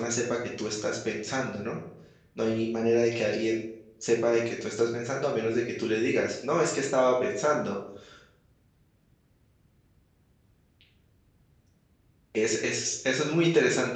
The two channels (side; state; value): both; identical; correlation 1.00